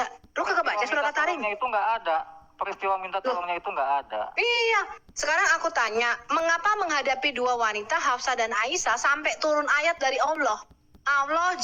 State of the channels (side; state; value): both; identical; correlation 1.00